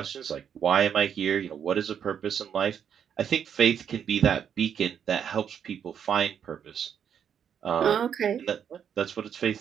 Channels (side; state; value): left; quieter; 8.2 dB